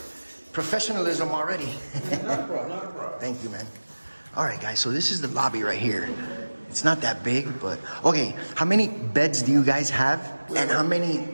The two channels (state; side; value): inverted; both; correlation -1.00